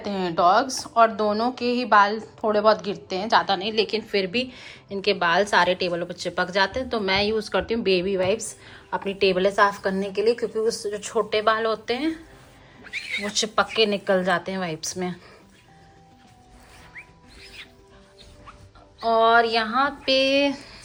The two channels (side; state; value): both; identical; correlation 1.00